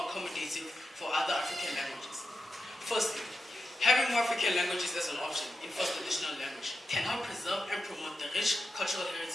accommodative for other African languages? Firstly, having more African languages as an option in first additional language can help preserve and promote the rich cultural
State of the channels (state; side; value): normal; both; correlation 0.89